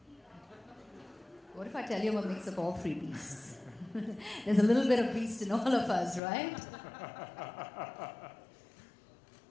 What if I tell you I'm a mix of all three beasts? There's a little bit of beast in all of us, right?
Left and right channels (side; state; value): right; drops out; at 6.2 s